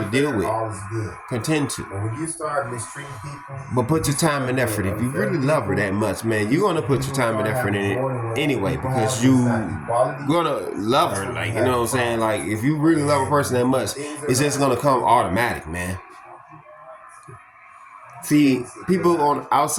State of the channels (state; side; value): identical; both; correlation 1.00